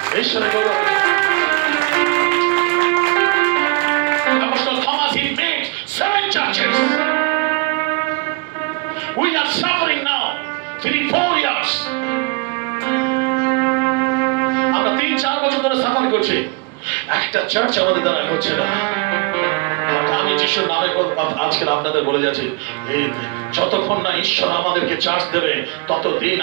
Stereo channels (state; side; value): quieter; left; 28.5 dB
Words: ঈশ্বরের গৌরব। Apostle Thomas, he made 7 churches. We are suffering now 3-4 years. আমরা 3-4 বছর ধরে সাফার করছি, একটা চার্চ আমাদের দ্বারা হচ্ছে না। আমি যিশুর নামে আজকে আপনাদের বলে যাচ্ছি, এই যতক্ষণ না ঈশ্বর আমাদেরকে চার্জ দেবে ততদিন